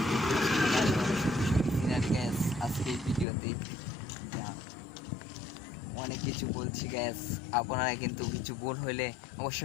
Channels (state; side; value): drops out; right; at 3.2 s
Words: গ্যাস। আজকে ভিডিওতে অনেক কিছু বলছি গ্যাস, আপনারা কিন্তু কিছু ভুল হইলে